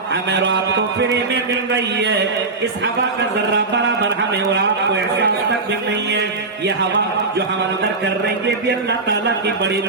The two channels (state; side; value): quieter; left; 3.7 dB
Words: ہمیں اور آپ کو فری میں مل رہی ہے، اس ہوا کا ذرہ برابر ہمیں اور آپ کو احساس تک بھی نہیں ہے۔ یہ ہوا جو ہم اندر کر رہے ہیں، یہ بھی اللہ تعالیٰ کی بڑی